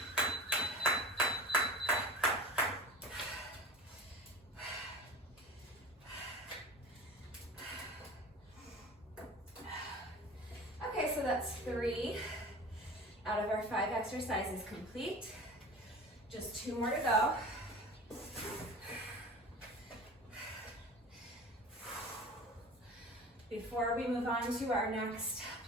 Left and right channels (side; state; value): both; normal; correlation 0.37